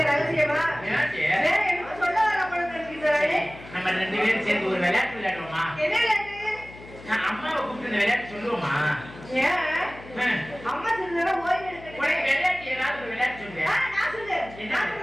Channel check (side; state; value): left; noise; hum, 18 dB below the sound